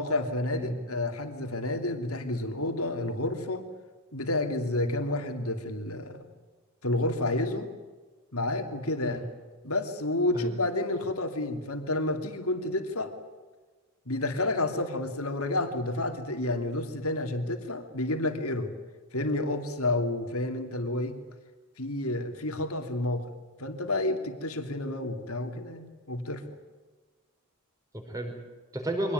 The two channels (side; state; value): both; normal; correlation -0.02